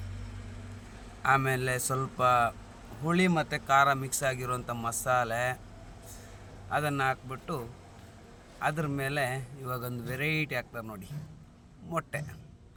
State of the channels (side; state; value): both; identical; correlation 1.00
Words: ಆಮೇಲೆ ಸ್ವಲ್ಪ ಹುಳಿ ಮತ್ತು ಖಾರ ಮಿಕ್ಸ್ ಆಗಿರುವಂಥ ಮಸಾಲೆ ಅದನ್ನು ಹಾಕ್ಬಿಟ್ಟು ಅದ್ರ ಮೇಲೆ ಇವಾಗೊಂದು ವೆರೈಟಿ ಹಾಕ್ತಾರೆ ನೋಡಿ,